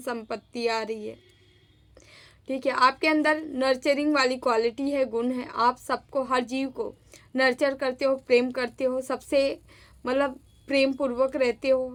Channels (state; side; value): identical; both; correlation 1.00